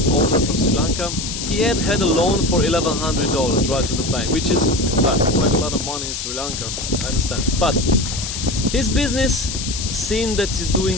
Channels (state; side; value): noise; left; hiss, 5 dB below the sound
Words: owner from Sri Lanka, he had a loan for $1,100, right, to the bank, which is quite a lot of money in Sri Lanka, so I understand. But his business seemed that he's